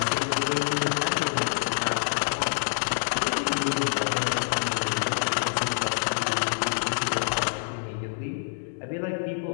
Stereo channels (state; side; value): silent; right; 58 dB below the other